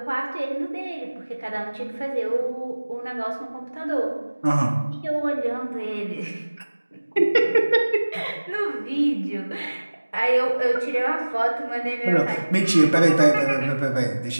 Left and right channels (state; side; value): inverted; both; correlation -1.00